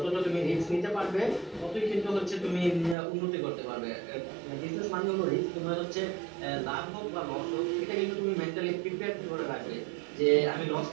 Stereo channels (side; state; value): left; drops out; at 3.0 s